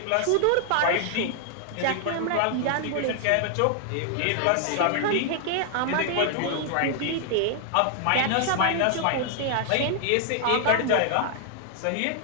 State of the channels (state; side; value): different; both; correlation -0.01